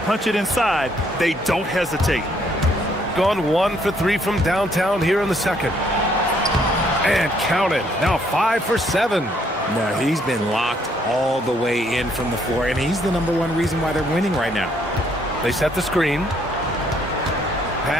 it inside, they don't hesitate. Gone 1 for 3 from downtown here in the second. And count it. Now 5 for 7. No, he's been locked all the way in from the floor, and he's the #1 reason why they're winning right now. They set the screen.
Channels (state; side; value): normal; both; correlation 0.68